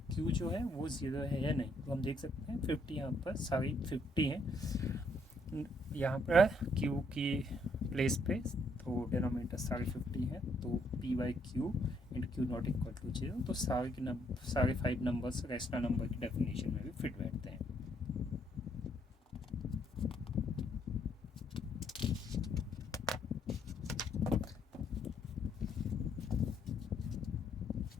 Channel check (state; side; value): normal; both; correlation 0.70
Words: q जो है वो 0 है या नहीं। तो हम देख सकते हैं 50 यहाँ पर सारी 50 हैं यहाँ पर q की प्लेस पे, तो डिनोमिनेटर सारे 50 हैं, तो p/q and q not equal to 0। तो सारे 5 नंबर्स रैशनल नंबर की डेफिनेशन में भी फिट बैठते हैं।